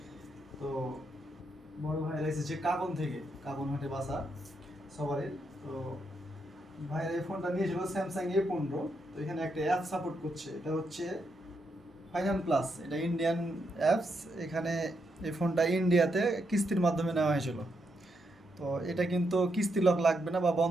তো বড় ভাইরা এসেছে কাবন থেকে, কাবন হাটে বাসা সবারই। তো ভাইরা এই ফোনটা নিয়েছিল স্যামসাং A15। তো এখানে একটা অ্যাপ সাপোর্ট করছে, এটা হচ্ছে ফাইনাল প্লাস। এটা ইন্ডিয়ান অ্যাপস। এখানে এই ফোনটা ইন্ডিয়াতে কিস্তির মাধ্যমে নেওয়া হয়েছিল। তো এটা কিন্তু কিস্তি লক লাগবে না বা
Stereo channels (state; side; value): normal; both; correlation 0.80